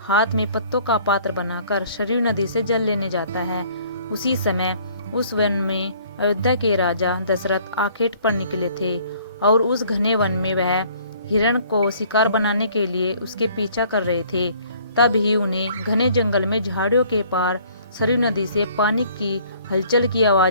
हाथ में पत्तों का पात्र बनाकर सरयू नदी से जल लेने जाता है। उसी समय उस वन में अयोध्या के राजा दशरथ आखेट पर निकले थे और उस घने वन में वह हिरण को शिकार बनाने के लिए उसके पीछा कर रहे थे। तब ही उन्हें घने जंगल में झाड़ियों के पार सरयू नदी से पानी की हलचल की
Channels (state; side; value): inverted; both; correlation -0.57